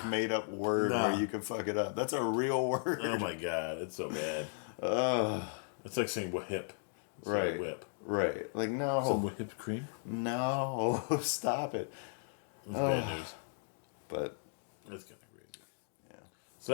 made-up word where you can fuck it up. That's a real word. Oh my god, it's so bad. It's like saying whip. Right. Like whip. Right. Like, no. Some whipped cream? No. Stop it. It's bad news. But it's kind of crazy. Yeah.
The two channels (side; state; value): right; silent; digital silence